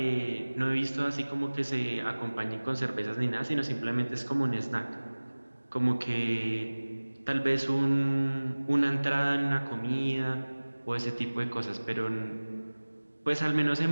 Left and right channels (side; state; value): both; inverted; correlation -1.00